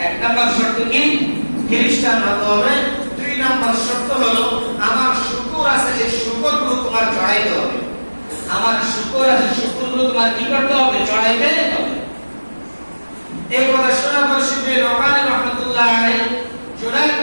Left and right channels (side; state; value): both; inverted; correlation -1.00